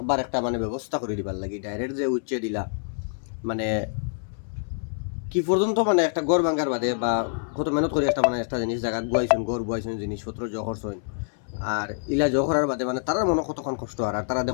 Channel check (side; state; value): right; silent; 61 dB below the other